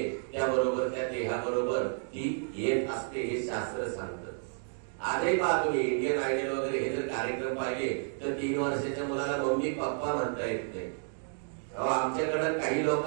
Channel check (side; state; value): left; silent; 57 dB below the other